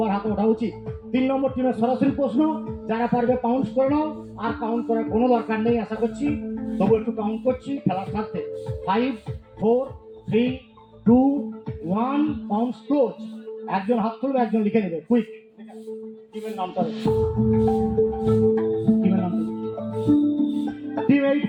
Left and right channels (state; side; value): identical; both; correlation 1.00